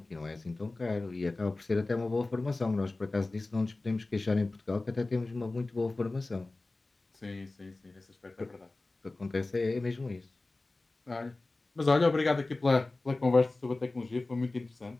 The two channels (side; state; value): right; quieter; 3.2 dB